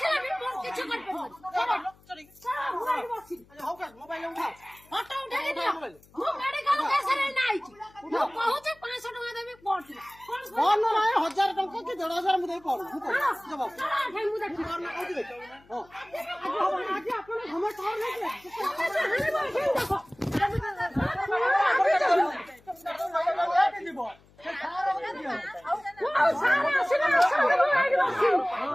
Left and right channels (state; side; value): noise; left; hum, 28 dB below the sound